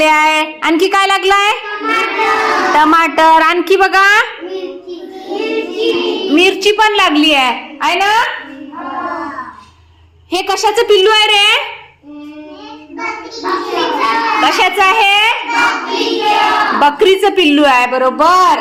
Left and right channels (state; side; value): identical; both; correlation 1.00